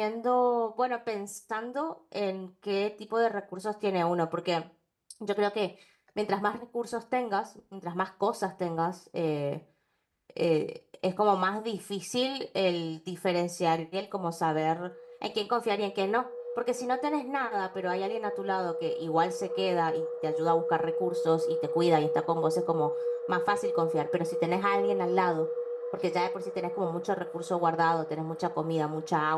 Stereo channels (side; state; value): both; identical; correlation 1.00